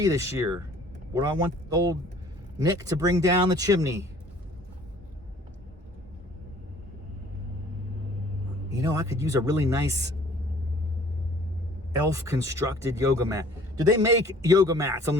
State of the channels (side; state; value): both; normal; correlation 0.53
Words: this year? What do I want old Nick to bring down the chimney? You know, I could use a really nice elf constructed yoga mat. Do they make yoga mats on